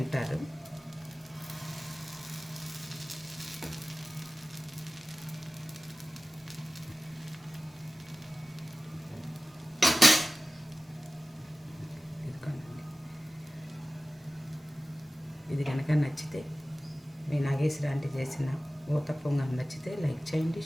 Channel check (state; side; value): normal; both; correlation 0.96